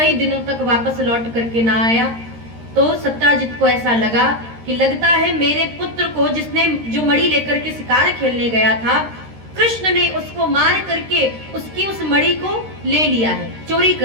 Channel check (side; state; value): left; late; 13 ms